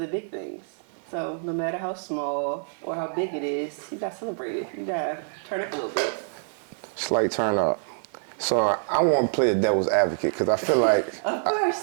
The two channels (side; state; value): left; silent; 61 dB below the other